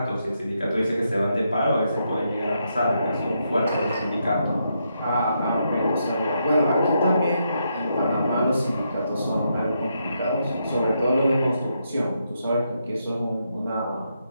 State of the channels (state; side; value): inverted; both; correlation -0.80